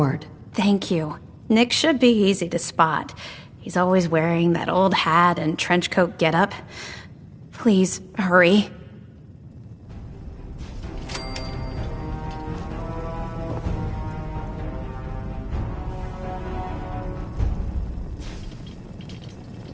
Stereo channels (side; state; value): both; identical; correlation 1.00